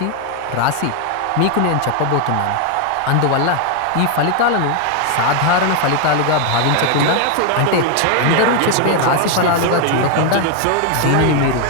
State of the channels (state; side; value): different; both; correlation 0.01